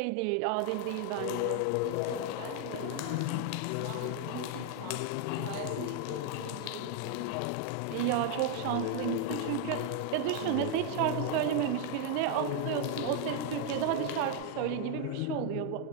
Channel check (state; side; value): different; both; correlation 0.00